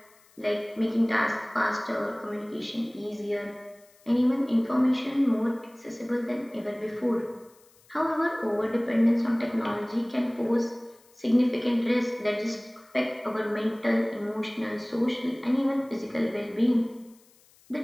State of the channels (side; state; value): left; noise; hiss, 30 dB below the sound